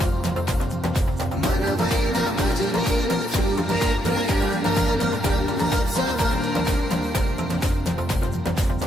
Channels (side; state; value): both; normal; correlation 0.78